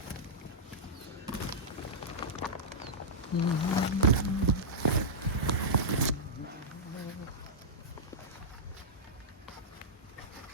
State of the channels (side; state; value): both; normal; correlation -0.11